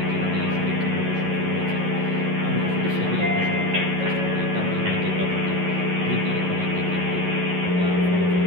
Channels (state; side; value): late; left; 11 ms